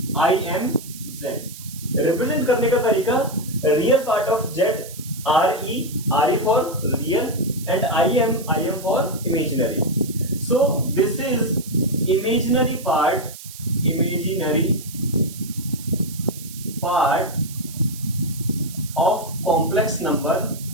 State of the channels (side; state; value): right; noise; hiss, 15 dB below the sound